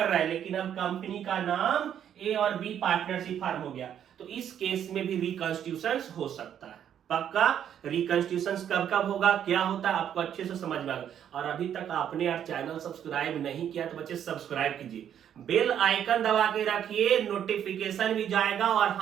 रहा है, लेकिन अब कंपनी का नाम ए और बी पार्टनरशिप फर्म हो गया। तो इस केस में भी रिकॉन्स्टिट्यूशन हो सकता है। पक्का रिकॉन्स्टिट्यूशन कब कब होगा, क्या होता है, आपको अच्छे से समझ में आएगा। और अभी तक आपने यार चैनल सब्सक्राइब नहीं किया तो बच्चे सब्सक्राइब कीजिए, बेल आइकन दबा के रखिए, नोटिफिकेशन भी जाएगा। और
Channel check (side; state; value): left; quieter; 9.5 dB